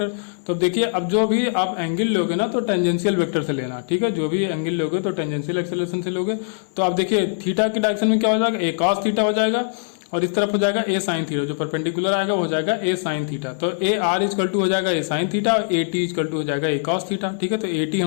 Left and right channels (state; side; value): silent; right; 64 dB below the other